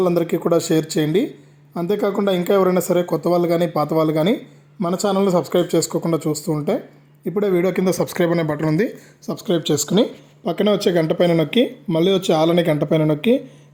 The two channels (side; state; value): both; identical; correlation 1.00